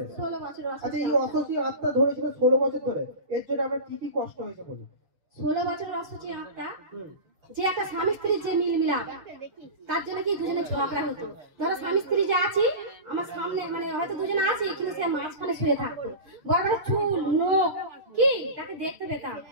16 বছর। আচ্ছা, এই অসুখী আত্মা ধরেছিল 16 বছর ধরে, এর জন্য আপনার কি কি কষ্ট হয়েছে বলুন? 16 বছর অসুখী আত্মা, যে একটা স্বামী স্ত্রীর যে মিল মিলাপ, তার জন্য কি দুজনে ঝগড়া হতো। ধরো স্বামী স্ত্রী যে আছি আমার সামনে, মানে হয়তো দুজনে আছি কিন্তু সে মাঝখানে শুয়ে থাকতো, বড় বড় চুল, নখ, কি তাকে দেখতে পেতাম।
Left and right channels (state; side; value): late; left; 6.5 ms